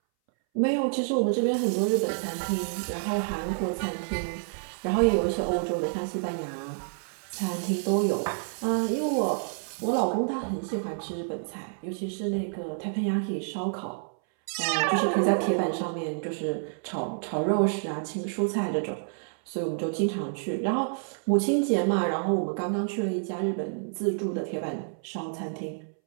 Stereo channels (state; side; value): silent; left; 59 dB below the other